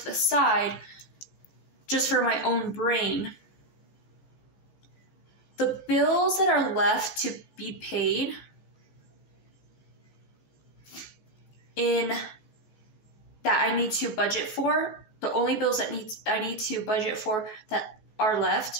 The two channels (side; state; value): right; late; 14 ms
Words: the side just for my own brain. The bills that are left to be paid in that I need to budget for, the only bills that I need to budget for that are